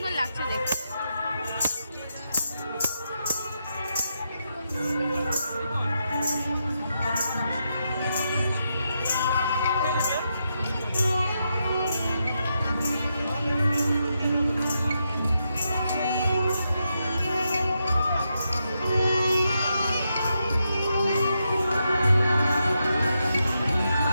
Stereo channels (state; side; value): inverted; both; correlation -0.83